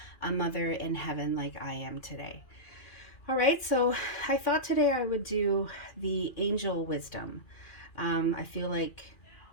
a mother in heaven like I am today. All right, so I thought today I would do the angel wisdom. I feel like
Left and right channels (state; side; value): late; right; 2.4 ms